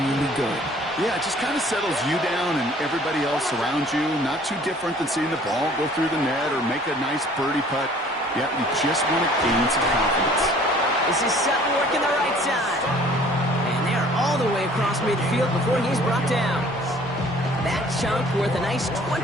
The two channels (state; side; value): normal; both; correlation 0.53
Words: good. Yeah, it just kind of settles you down and everybody else around you. Not too different than seeing the ball go through the net or make a nice birdie putt. Yeah, you just want to gain some confidence. This is Sutton working the right side. And they're all the way across midfield before he's brought down. That chunk worth a nice